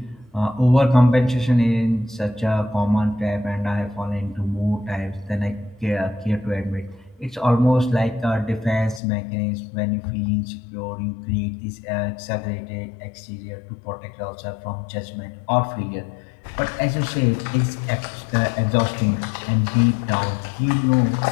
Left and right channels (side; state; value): right; drops out; at 9.0 s